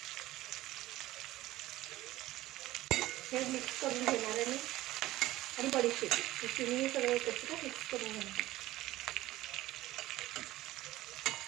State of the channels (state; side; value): quieter; left; 16.4 dB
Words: हे मिक्स करून घेणार आहे मी आणि बडीशेप हे तिन्ही सगळं एकत्र मिक्स करून घेणार.